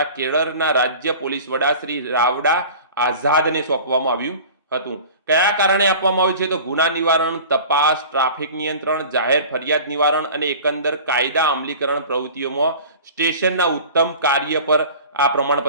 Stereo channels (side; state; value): both; inverted; correlation -0.40